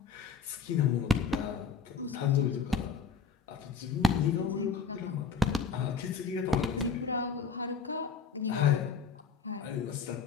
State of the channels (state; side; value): quieter; right; 5.6 dB